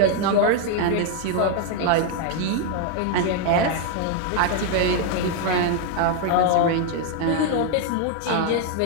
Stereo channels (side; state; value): both; different; correlation 0.00